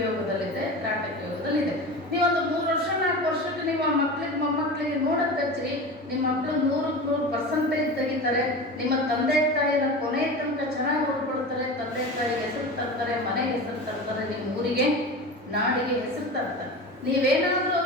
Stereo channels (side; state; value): both; normal; correlation 0.30